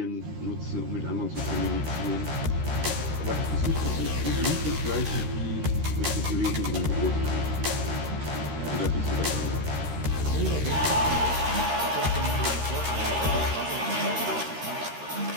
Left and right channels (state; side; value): late; left; 13 ms